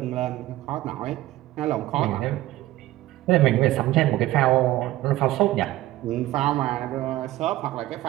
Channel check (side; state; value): left; quieter; 16.0 dB